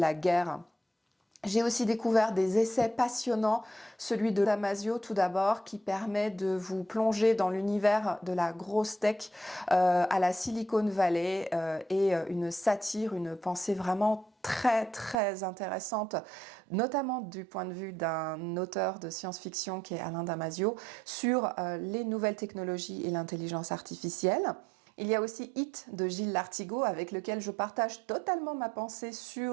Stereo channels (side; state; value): left; drops out; at 15.2 s